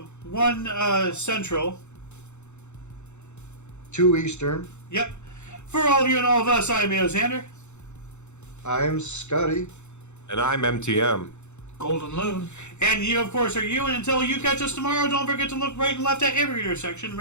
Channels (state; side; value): late; right; 0.83 ms